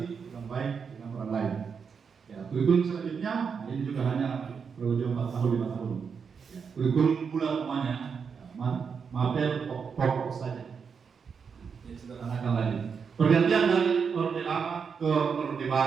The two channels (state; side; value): quieter; left; 6.1 dB